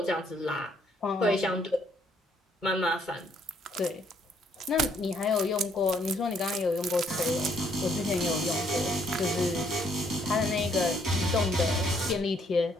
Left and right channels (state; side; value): normal; both; correlation 0.68